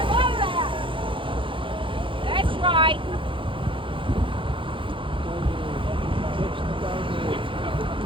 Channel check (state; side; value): late; left; 0.25 ms